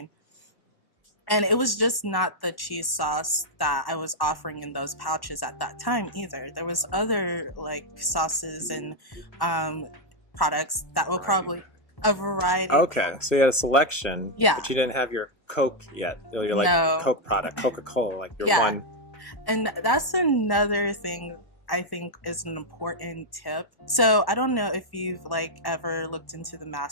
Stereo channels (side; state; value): right; late; 1.1 ms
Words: And it was just not the cheese sauce that I was offering in those pouches at that time either. There was other like sauces and products that will probably a variety. Okay. So you had a selection. Yeah. You didn't have your Coke yet. Like No. Coke product, Coca-Cola. Like Yeah. And that's another thing I think is an important tip. So I don't know if you've like ever looked into the